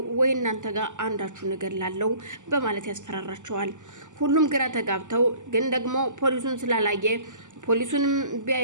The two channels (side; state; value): left; late; 0.85 ms